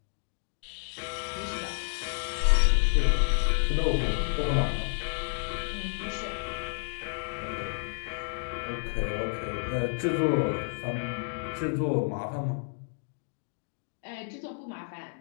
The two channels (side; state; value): right; silent; digital silence